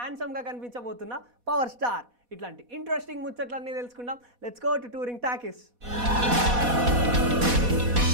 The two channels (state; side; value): late; left; 4.1 ms